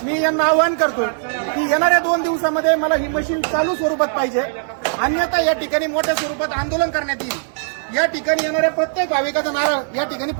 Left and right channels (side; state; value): left; silent; digital silence